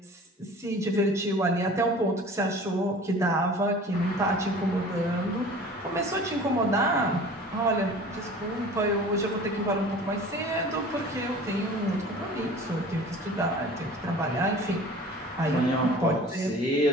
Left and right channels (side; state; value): both; normal; correlation 0.43